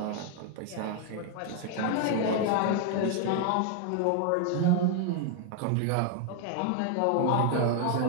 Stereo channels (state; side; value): different; both; correlation 0.00